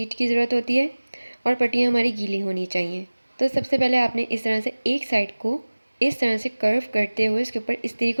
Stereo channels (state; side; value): inverted; both; correlation -1.00